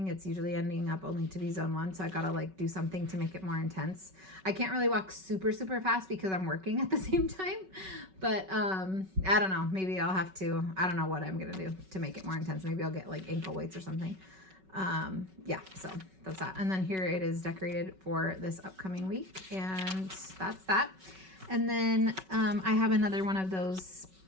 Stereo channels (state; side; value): late; left; 5.3 ms